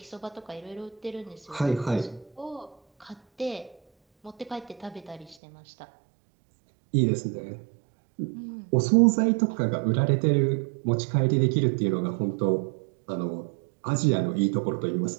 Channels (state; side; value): drops out; left; at 5.4 s